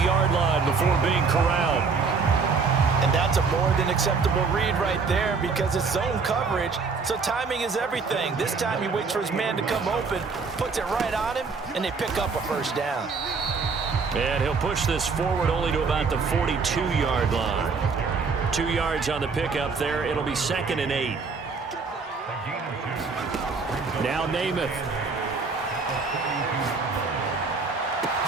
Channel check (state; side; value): quieter; left; 4.8 dB